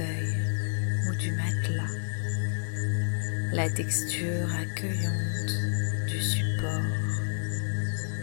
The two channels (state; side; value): silent; right; digital silence